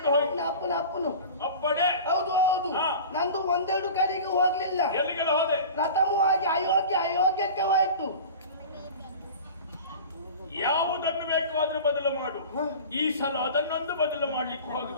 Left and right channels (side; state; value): both; inverted; correlation -0.36